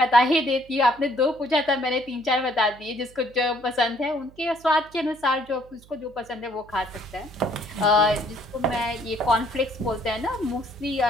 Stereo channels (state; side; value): noise; right; hum, 25 dB below the sound